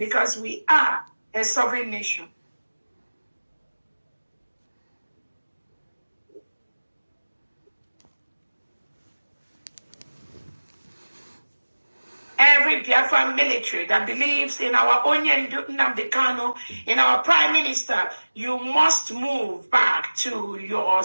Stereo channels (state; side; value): inverted; both; correlation -1.00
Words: we are a sovereign nation. Every Biafran military that believes in our NNAMDI KANU, in our Prime Minister, you must move back to your